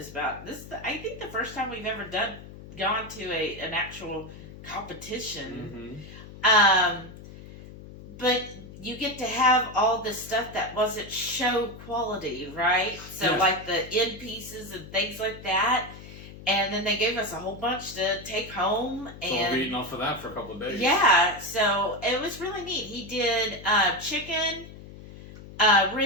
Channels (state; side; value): noise; left; hum, 16 dB below the sound